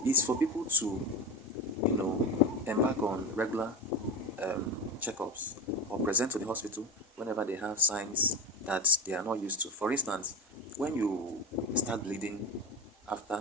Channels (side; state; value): both; normal; correlation 0.24